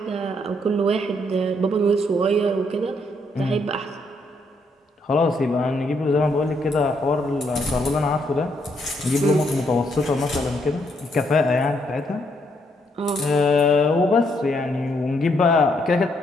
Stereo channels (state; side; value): normal; both; correlation 0.73